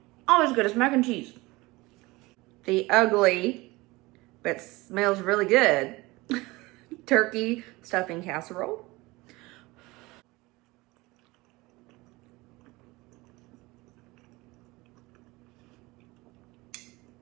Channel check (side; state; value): left; quieter; 21.9 dB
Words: Always good as mac and cheese. The ugly, but smells really good, turkey stuffing casserole.